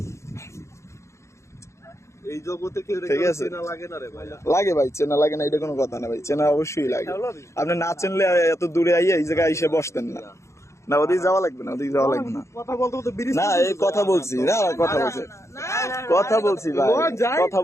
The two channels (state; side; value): late; right; 0.14 ms